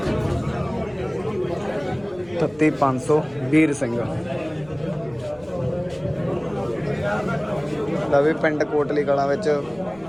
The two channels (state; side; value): noise; left; rumble, 25 dB below the sound